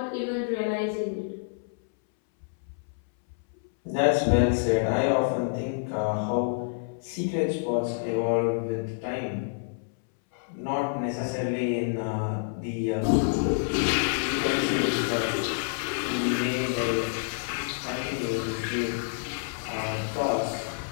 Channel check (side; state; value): right; silent; 59 dB below the other